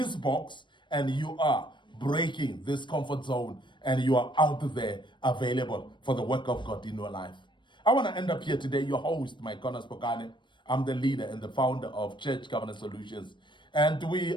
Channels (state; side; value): late; right; 0.23 ms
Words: box and you are breaking this comfort zone and you are out there available for the work of God in your life. I want to end up here today, your host, Micornus Phokane. I'm the leader and the founder of Church Governance Solutions, and we